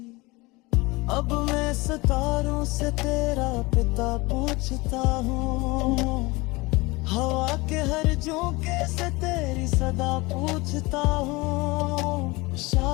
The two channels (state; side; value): quieter; right; 23.3 dB